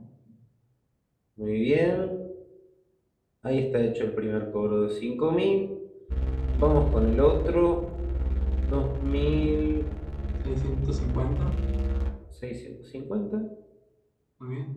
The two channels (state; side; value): identical; both; correlation 1.00